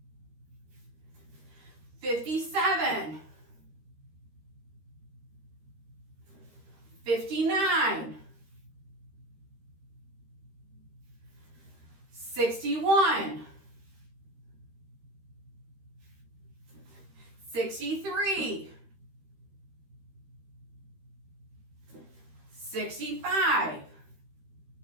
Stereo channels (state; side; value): late; left; 13 ms